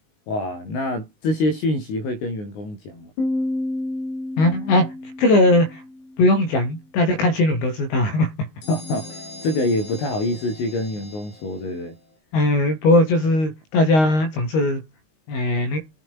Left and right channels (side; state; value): right; late; 19 ms